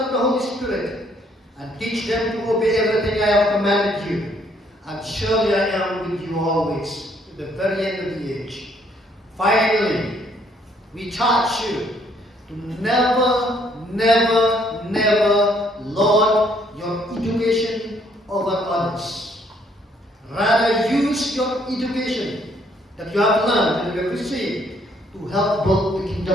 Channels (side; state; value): both; normal; correlation 0.66